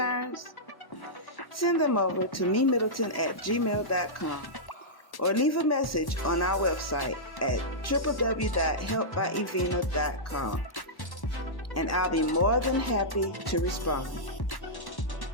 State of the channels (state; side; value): late; right; 1.1 ms